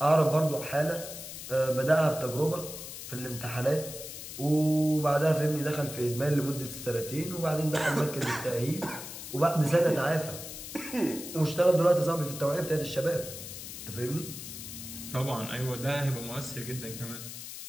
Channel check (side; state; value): left; noise; hiss, 10 dB below the sound